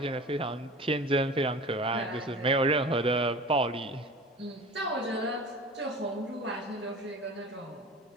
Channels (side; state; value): both; normal; correlation 0.38